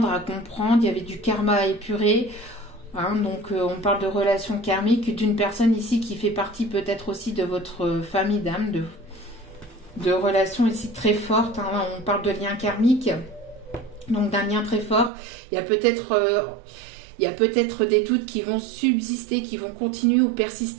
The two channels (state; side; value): drops out; left; at 15.1 s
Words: à comprendre, il y avait du karma à épurer. Hein, donc on parle de relations karmiques, d'une personne ici qui fait partie peut-être aussi de votre famille d'âme, de relations ici très fortes. Hein, on parle de liens karmiques, donc d'un lien très fort. Il y a peut-être des doutes qui vont subsister, qui vont continuer ou